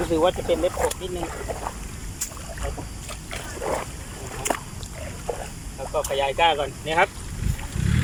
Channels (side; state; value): both; identical; correlation 1.00